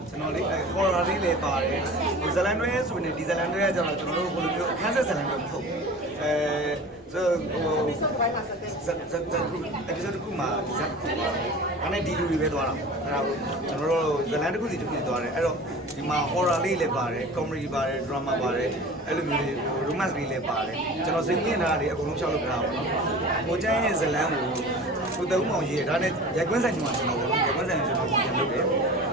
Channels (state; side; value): normal; both; correlation 0.38